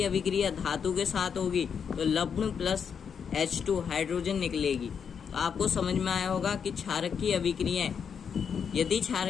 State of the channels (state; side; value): quieter; right; 7.0 dB